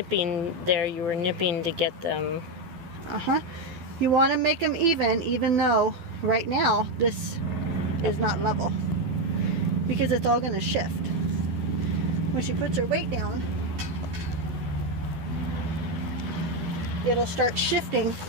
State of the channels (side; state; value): left; late; 12 ms